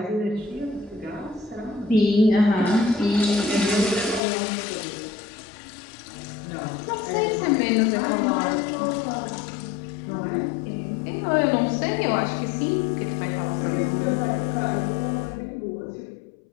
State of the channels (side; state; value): right; drops out; at 4.2 s